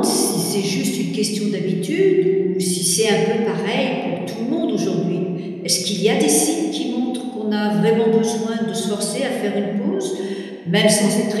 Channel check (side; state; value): both; identical; correlation 1.00